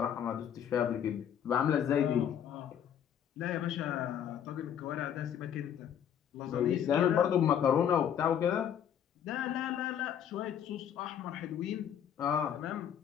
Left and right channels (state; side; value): quieter; right; 9.2 dB